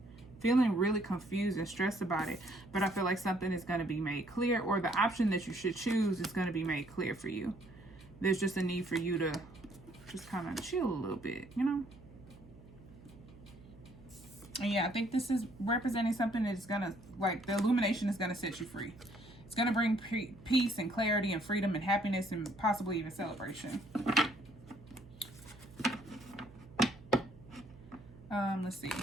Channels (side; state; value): right; noise; hum, 21 dB below the sound